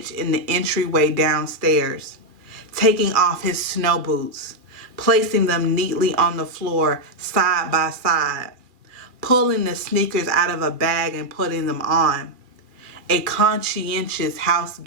in the entryway downstairs, taking off his snow boots, placing them neatly on the floor side by side, pulling the sneakers out of a bag and putting them on. A conscientious house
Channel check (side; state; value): left; late; 2.3 ms